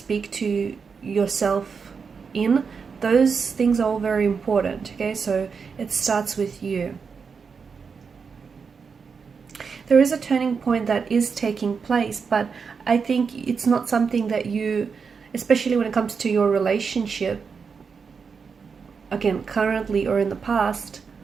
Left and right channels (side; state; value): left; quieter; 5.7 dB